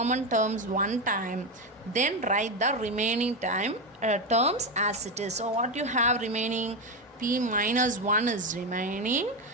terms one time, then write the remaining terms as it is. So what you have remaining? P minus 1 is remaining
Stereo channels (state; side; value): normal; both; correlation 0.12